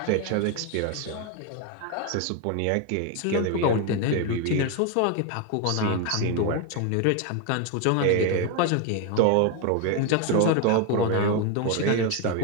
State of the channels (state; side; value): different; both; correlation 0.02